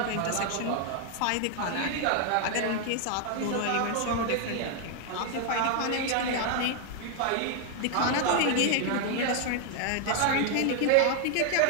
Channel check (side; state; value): both; different; correlation 0.00